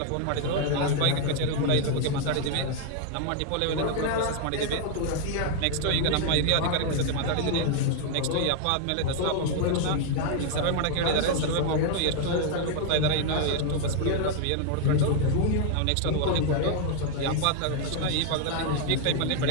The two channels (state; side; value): different; both; correlation 0.00